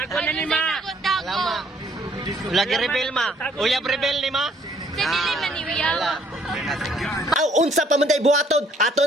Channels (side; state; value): both; normal; correlation 0.64